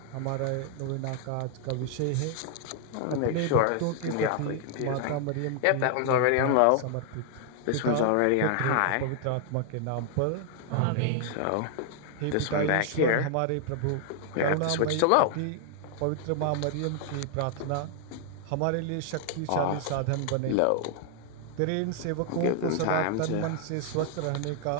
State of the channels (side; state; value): both; different; correlation 0.00